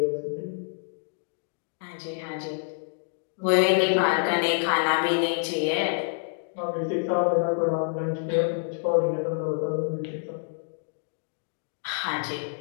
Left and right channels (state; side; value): silent; right; digital silence